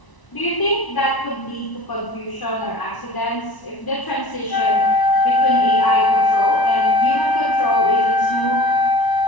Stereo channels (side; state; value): right; late; 1.0 ms